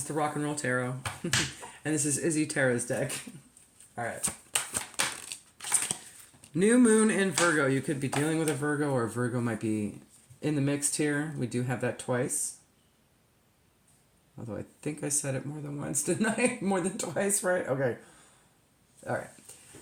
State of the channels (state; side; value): identical; both; correlation 1.00